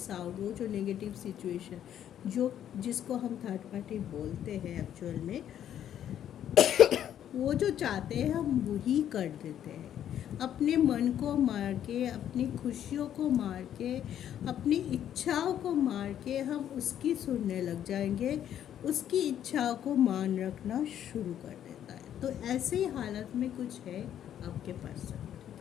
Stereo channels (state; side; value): quieter; right; 10.4 dB